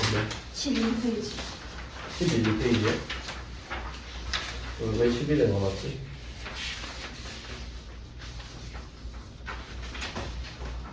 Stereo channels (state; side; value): identical; both; correlation 1.00